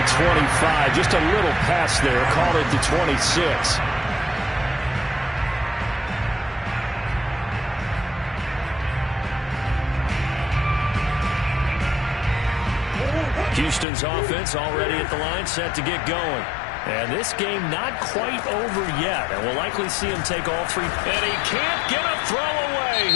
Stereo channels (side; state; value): right; drops out; at 13.9 s